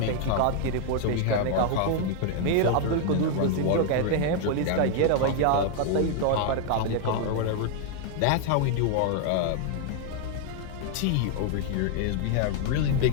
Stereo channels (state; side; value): different; both; correlation 0.00